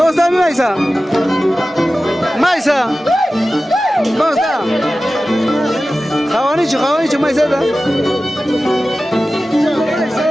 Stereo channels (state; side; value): normal; both; correlation 0.95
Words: está mi Maisa? Maisa, ¿dónde está? Jabanicho, Jabanicho, Maiseta.